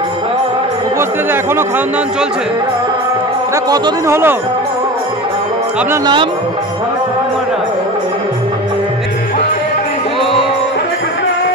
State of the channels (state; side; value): normal; both; correlation 0.32